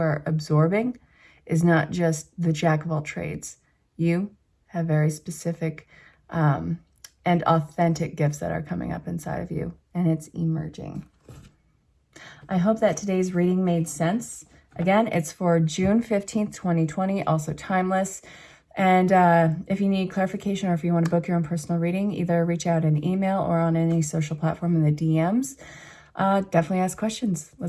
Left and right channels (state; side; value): identical; both; correlation 1.00